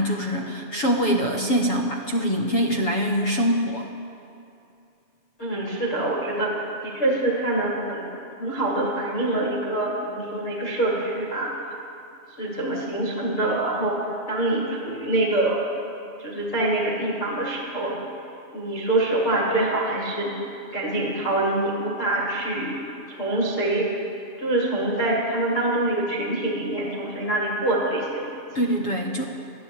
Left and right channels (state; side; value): late; right; 7.1 ms